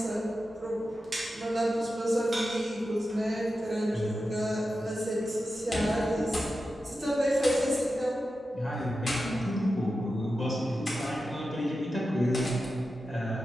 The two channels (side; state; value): both; normal; correlation 0.91